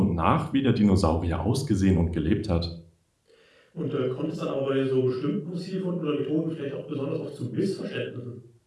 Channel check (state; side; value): identical; both; correlation 1.00